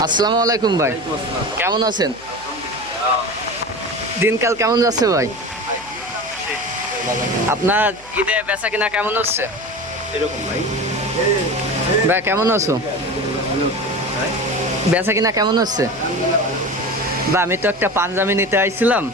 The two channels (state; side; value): noise; right; hum, 24 dB below the sound